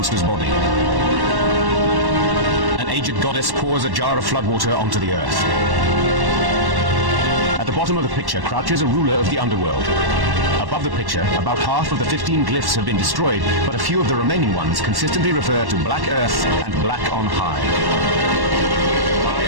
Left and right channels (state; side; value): late; left; 1.1 ms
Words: body. An aged goddess pours a jar of flood water onto the Earth. At the bottom of the picture crouches a ruler of the underworld. Above the picture, about half of the 15 glyphs have been destroyed, but a few of the remaining ones consistently refer to Black Earth and Black on High.